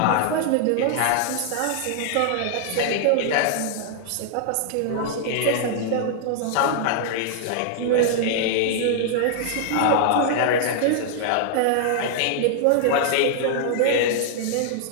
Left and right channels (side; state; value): both; different; correlation -0.01